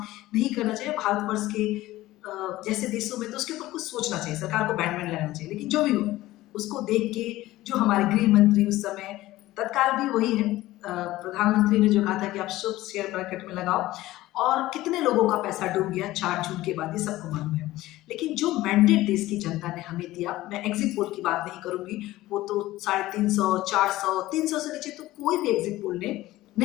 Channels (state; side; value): quieter; right; 16.8 dB